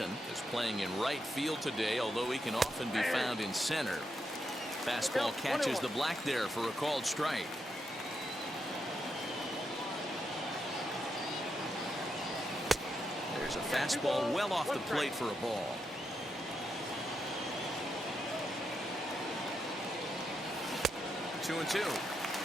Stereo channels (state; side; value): normal; both; correlation 0.83